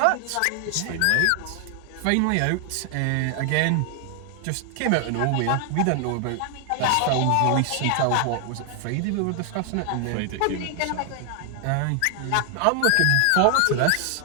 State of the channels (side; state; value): both; different; correlation 0.00